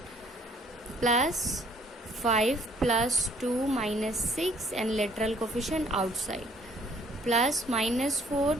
Plus 5 plus 2 minus 6 and literal coefficient outside plus minus 4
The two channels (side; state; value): both; normal; correlation 0.61